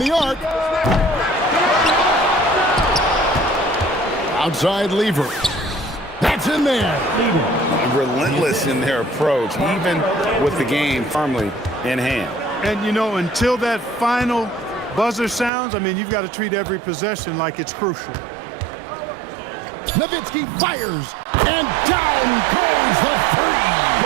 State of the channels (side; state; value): left; drops out; at 15.5 s